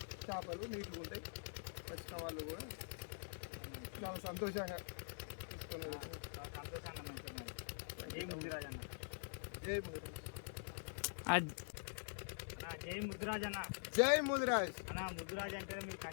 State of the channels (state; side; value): silent; right; digital silence